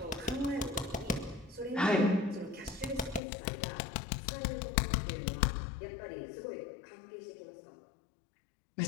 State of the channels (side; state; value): right; drops out; at 3.2 s